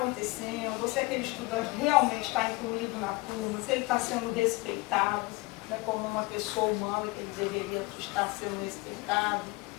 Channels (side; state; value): right; quieter; 23.8 dB